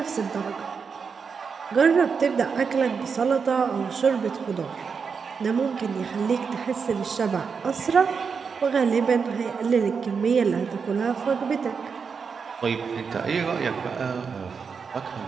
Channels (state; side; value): quieter; left; 5.8 dB